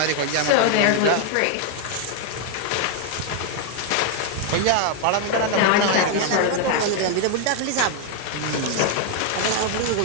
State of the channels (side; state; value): both; different; correlation 0.00